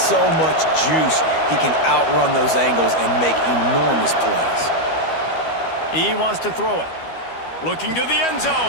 much juice. He can outrun those angles and make enormous plays. He wants to throw it. Looking to the end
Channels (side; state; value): right; late; 12 ms